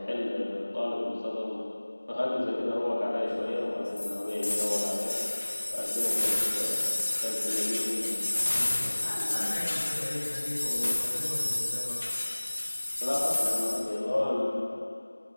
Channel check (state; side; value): inverted; both; correlation -1.00